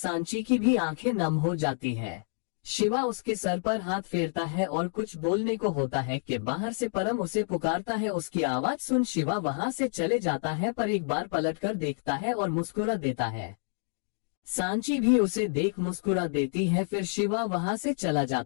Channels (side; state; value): right; silent; 59 dB below the other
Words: की भी आंखें नम हो जाती है। शिवा उसके सर पर हाथ फेरता है और कुछ बोलने को होता है कि बाहर से परम उसे पुकारता है। उसकी आवाज सुन शिवा वहां से चले जाता है, पर एक बार पलटकर देखता है और मुस्कुरा देता है। सांची भी उसे देख मुस्कुरा देती है, फिर शिवा वहां से चला